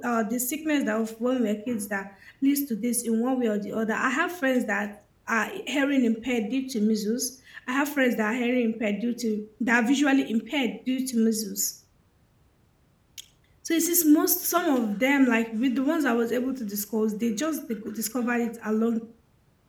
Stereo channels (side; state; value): both; identical; correlation 1.00